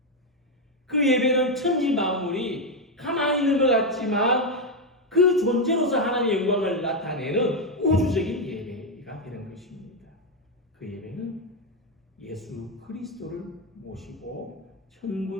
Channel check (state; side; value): normal; both; correlation 0.05